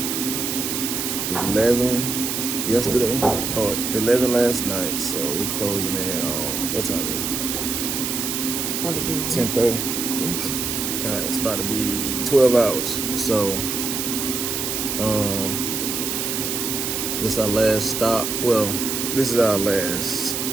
11 yesterday, or 11 last night. So we're closing in on, what time is That'd be it? 10:30. Yeah. All right, it's about to be 12 hours. So, this is our last stop. Well, this is our last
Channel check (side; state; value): right; noise; hiss, 2 dB below the sound